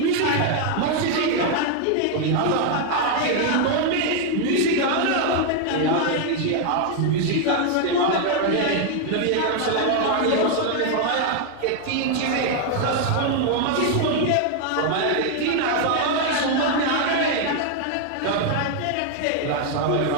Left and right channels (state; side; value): different; both; correlation 0.00